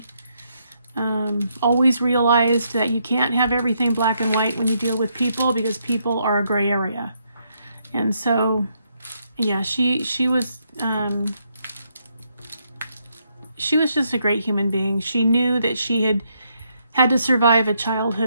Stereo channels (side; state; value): both; inverted; correlation -0.76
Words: Always realized that you can't have everything black and white when you deal with people, because people are a gray area. And so, yeah, she was just a great human being. She knew that she had to survive a